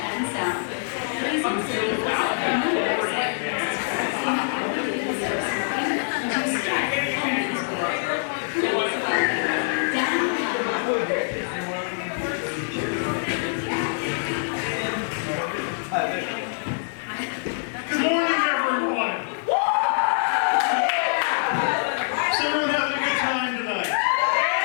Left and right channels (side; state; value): right; silent; digital silence